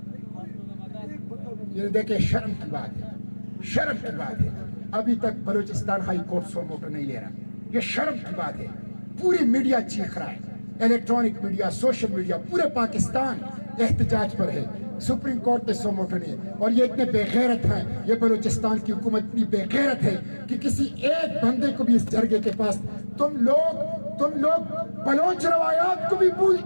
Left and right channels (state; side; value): inverted; both; correlation -1.00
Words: یہ دیکھیں شرم کی بات ہے، ابھی تک بلوچستان ہائی کورٹ سو موٹو نہیں لے رہا، یہ شرم کی بات ہے۔ پوری میڈیا چیخ رہا ہے، الیکٹرانک میڈیا، سوشل میڈیا، پورے پاکستان احتجاج پر ہے، سپریم کورٹ نے سو موٹو نہیں ہے۔ اور یہ اتنے بے غیرت ہیں، یہ بلوچستان کی حکومت اتنی بے غیرت ہے کہ کسی ایک بندے کو بھی اس جرگے کے پاس، تم لوگ بلوچ روایات کو بھی بھول